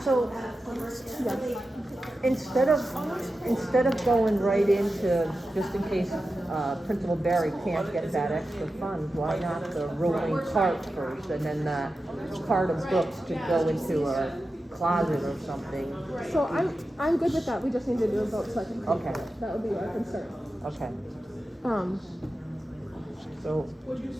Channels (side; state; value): both; normal; correlation 0.92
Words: So, instead of going right into, just in case, Principal Barry can't get that extra funds, why not the rolling cart first, and then the cart of books to go into a closet or something? So I'm good with that, we just need to do a vote so I can. Okay. That would be our concern. Okay, Um, so, Would you